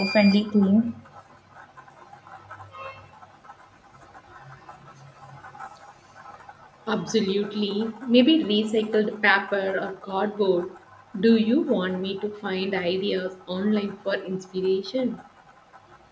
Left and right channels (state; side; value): identical; both; correlation 1.00